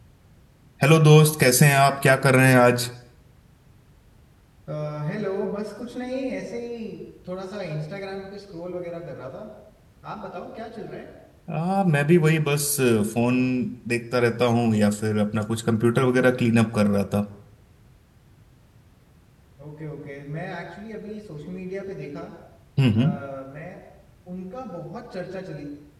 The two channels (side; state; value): both; identical; correlation 1.00